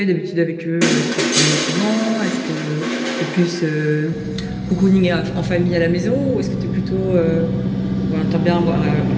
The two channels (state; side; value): identical; both; correlation 1.00